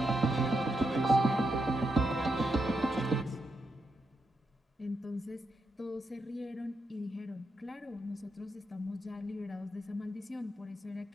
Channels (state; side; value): normal; both; correlation 0.83